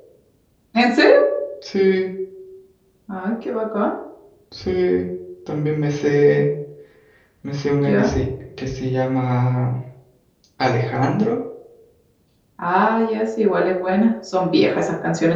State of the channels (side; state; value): both; identical; correlation 1.00